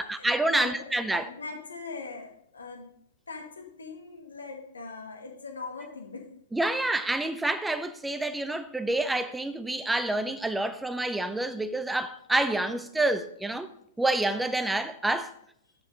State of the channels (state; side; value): normal; both; correlation 0.82